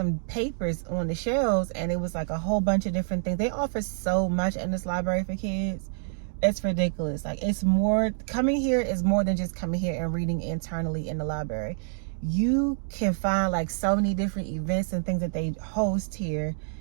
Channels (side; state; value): left; silent; digital silence